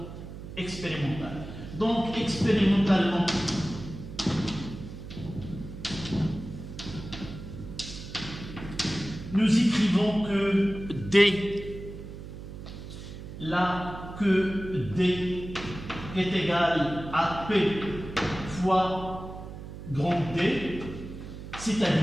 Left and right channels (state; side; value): noise; right; hum, 11 dB below the sound